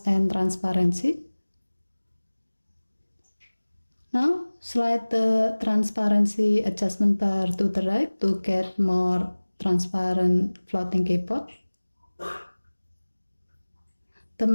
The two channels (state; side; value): inverted; both; correlation -1.00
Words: and Transparency. Now, slide the transparency adjustment bar to the right to get more transparent floating keyboard. The